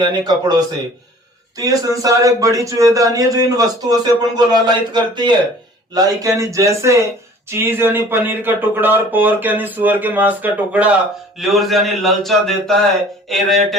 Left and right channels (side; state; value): both; normal; correlation 0.49